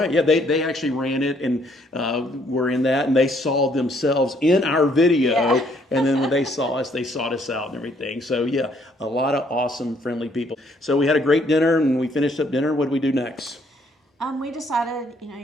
Yeah, they actually ran it and were in that, and they saw themselves in our video. Yeah. And then when they saw us, they sought us out and everything. So yeah, a lot of awesome, friendly people. So we had a great dinner, and we finished up dinner. What did we do next? We decided,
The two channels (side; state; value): both; normal; correlation 0.67